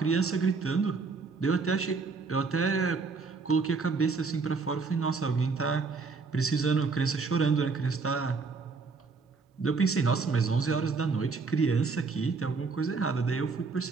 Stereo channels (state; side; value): quieter; left; 4.5 dB